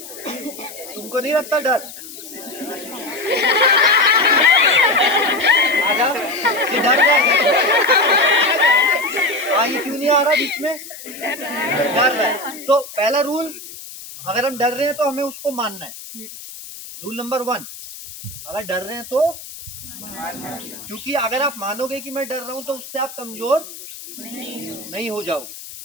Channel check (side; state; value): left; noise; hiss, 14 dB below the sound